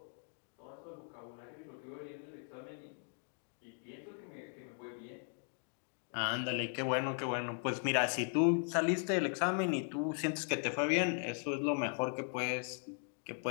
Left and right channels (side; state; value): right; silent; 52 dB below the other